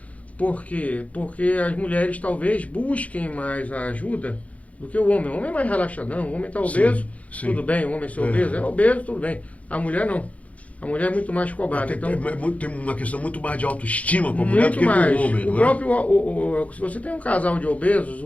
Por quê? Porque as mulheres talvez busquem mais a ajuda do que o homem. O homem é mais relaxadão, o homem está obeso, sim. Tudo bem, o homem ser obeso, é obeso, tudo bem. A mulher não. A mulher é muito mais cobrada. Tem uma questão muito mais de autoestima com a mulher do que com o homem. Se você tem um casal de obesos,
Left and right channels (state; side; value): late; right; 0.067 ms